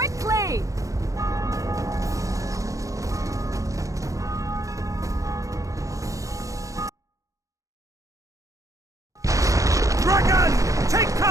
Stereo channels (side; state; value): left; late; 0.16 ms